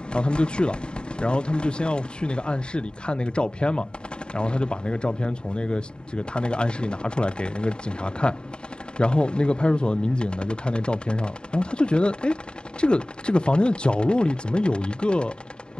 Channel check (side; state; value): right; late; 0.050 ms